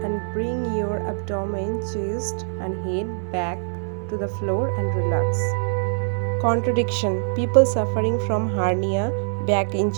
and bring your abdomen, chest and head back to the floor and relax. Contradiction. People suffering from hernia, back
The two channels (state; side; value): silent; left; digital silence